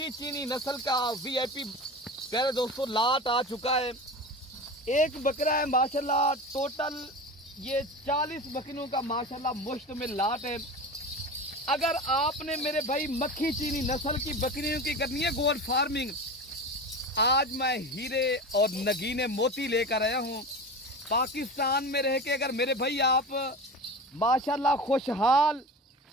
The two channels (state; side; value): normal; both; correlation 0.30